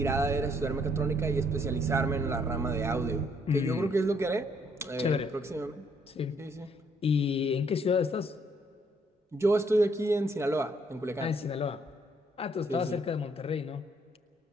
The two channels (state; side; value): normal; both; correlation 0.68